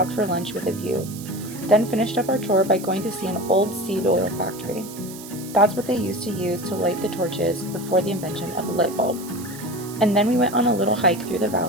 for lunch with a view, then finished up our tour by going to see an old seed oil factory. That's what they used to use to light the torches before the invention of the light bulb. And then we went on a little hike through the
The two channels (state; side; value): noise; right; hiss, 15 dB below the sound